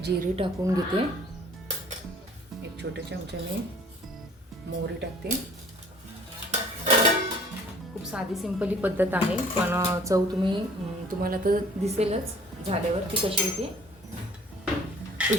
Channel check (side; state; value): both; normal; correlation 0.53